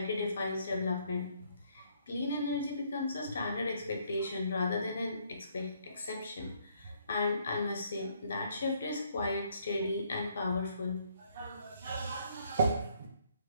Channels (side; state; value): both; inverted; correlation -0.68